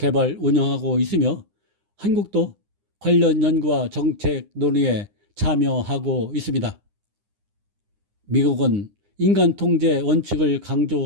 운영하고 있으며 한국도 관련 연구와 정책 논의에 참여하고 있습니다. 미국은 인간 통제 원칙을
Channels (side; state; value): left; late; 9.8 ms